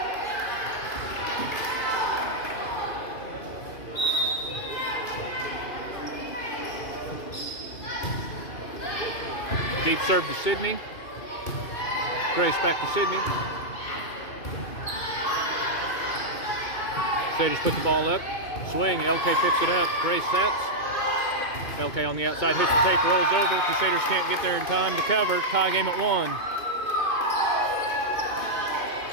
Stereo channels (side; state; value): right; late; 2.5 ms